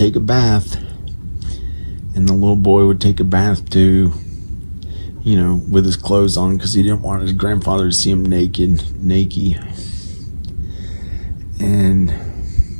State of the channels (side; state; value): both; inverted; correlation -1.00